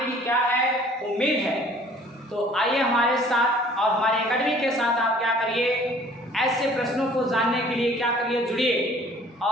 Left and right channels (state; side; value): normal; both; correlation 0.53